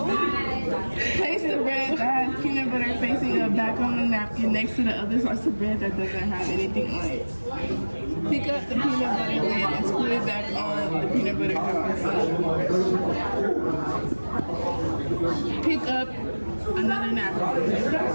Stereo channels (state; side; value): inverted; both; correlation -1.00